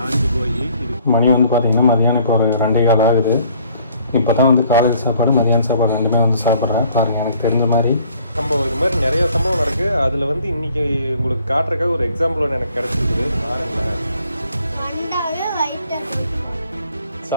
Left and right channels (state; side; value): inverted; both; correlation -0.60